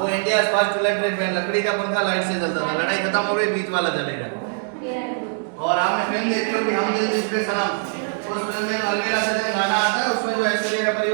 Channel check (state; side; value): silent; left; 64 dB below the other